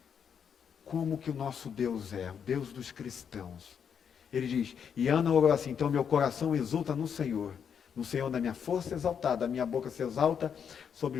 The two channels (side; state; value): right; quieter; 7.5 dB